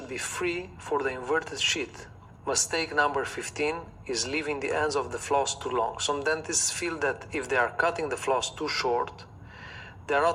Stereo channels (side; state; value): both; identical; correlation 1.00